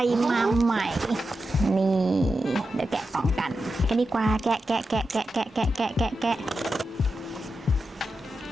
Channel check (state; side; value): normal; both; correlation 0.90